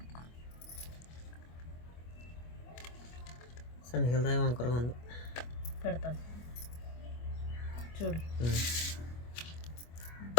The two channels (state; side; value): late; right; 25 ms